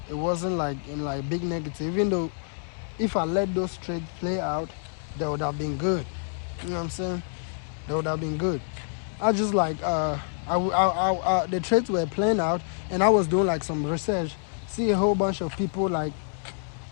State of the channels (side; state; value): right; silent; digital silence